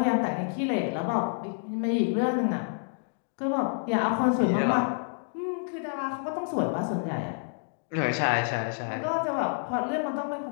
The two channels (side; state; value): right; silent; digital silence